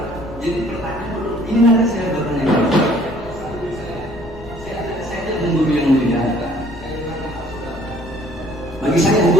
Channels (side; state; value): left; noise; rumble, 16 dB below the sound